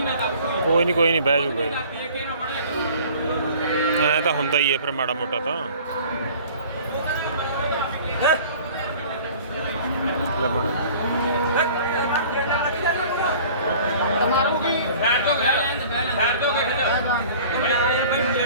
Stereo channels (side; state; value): both; inverted; correlation -0.47